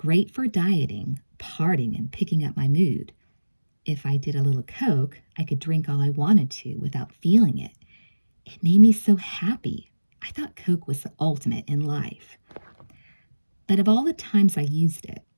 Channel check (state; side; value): inverted; both; correlation -1.00